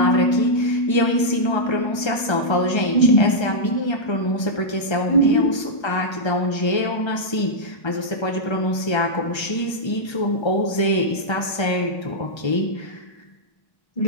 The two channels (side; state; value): right; late; 1.3 ms